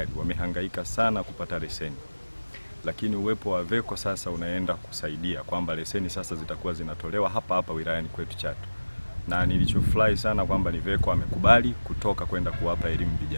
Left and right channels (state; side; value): inverted; both; correlation -1.00